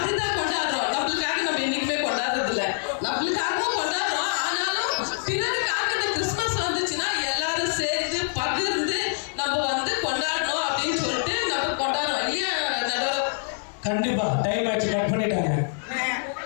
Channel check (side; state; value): right; silent; 61 dB below the other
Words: கொண்டாடுறோம். நம்மளுக்காக நம்ம என்னைக்குமே கொண்டாடுறது இல்லை, நம்மளுக்காகவும் கொண்டாடுறோம். ஆனாலும் பிறருக்காக இந்த கிறிஸ்துமஸ் வந்துச்சுன்னா எல்லாரும் சேர்ந்து பகிர்ந்து நம்ம வந்து கொண்டாடணும் அப்படின்னு சொல்லிட்டு நம்ம கொண்டாடுறோம் இல்லையா நடுவர்? கண்டிப்பா. டைம் ஆச்சு, கட் பண்ணிட்டாங்க.